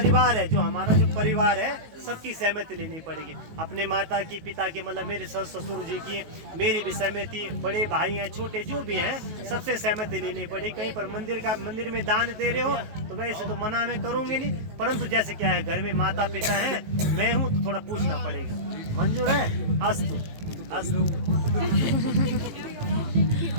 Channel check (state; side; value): late; left; 18 ms